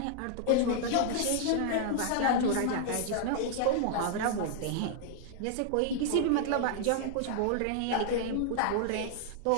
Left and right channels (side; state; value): both; different; correlation -0.01